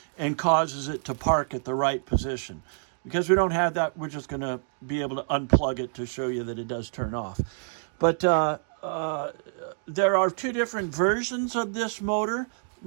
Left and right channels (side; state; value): left; silent; digital silence